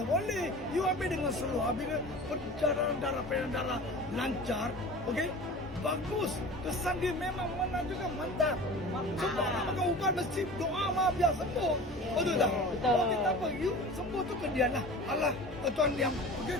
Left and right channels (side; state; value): both; normal; correlation 0.38